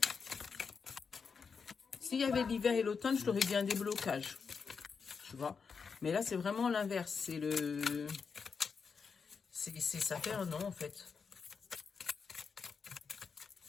S'il y avait l'hiver et l'automne, je t'aurais dit un déblocage. Tu vois. Mais là, c'est vraiment l'inverse. Ça fait 1 an, en fait.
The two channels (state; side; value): quieter; right; 5.6 dB